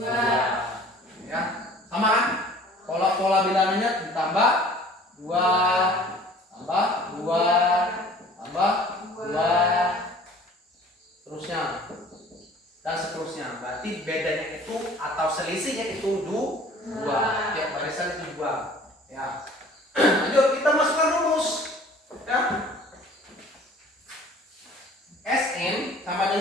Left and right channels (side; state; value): both; normal; correlation 0.49